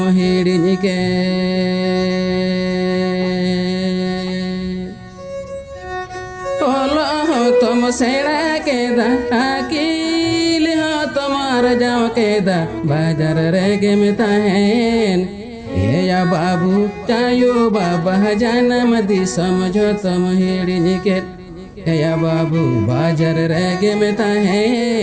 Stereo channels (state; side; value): identical; both; correlation 1.00